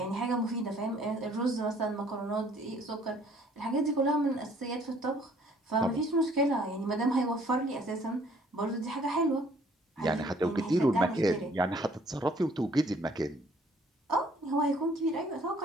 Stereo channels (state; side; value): normal; both; correlation 0.60